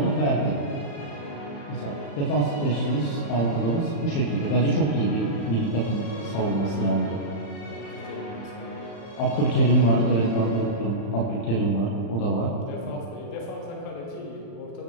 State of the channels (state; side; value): late; right; 35 ms